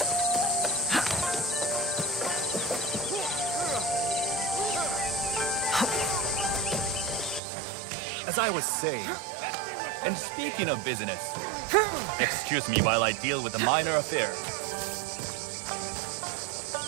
As I was saying, and speaking of business, excuse me while I deal with a minor affair.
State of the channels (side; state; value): left; drops out; at 7.4 s